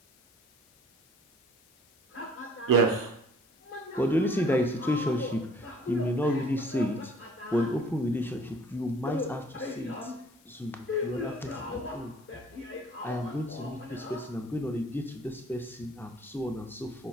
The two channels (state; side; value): noise; left; hiss, 29 dB below the sound